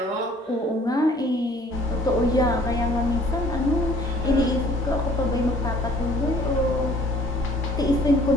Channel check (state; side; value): normal; both; correlation 0.56